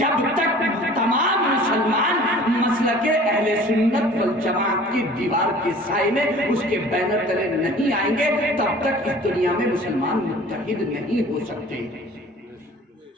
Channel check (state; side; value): normal; both; correlation 0.46